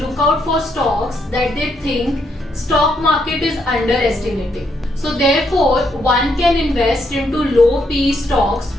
out for stocks that they think stock market is underestimating. So therefore, one can invest into low PE stocks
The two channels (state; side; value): normal; both; correlation 0.76